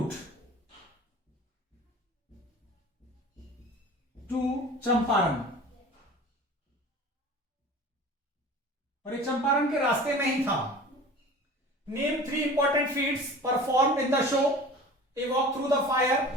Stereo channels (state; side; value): normal; both; correlation 0.40